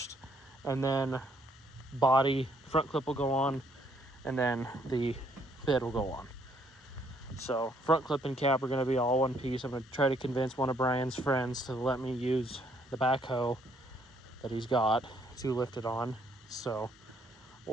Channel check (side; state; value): both; normal; correlation 0.68